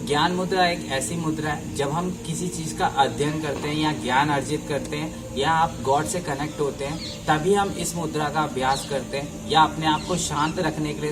ज्ञान मुद्रा एक ऐसी मुद्रा है जब हम किसी चीज का अध्ययन करते हैं या ज्ञान अर्जित करते हैं या आप गॉड से कनेक्ट होते हैं, तभी हम इस मुद्रा का अभ्यास करते हैं, या अपने आप को शांत रखने के लिए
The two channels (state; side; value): identical; both; correlation 1.00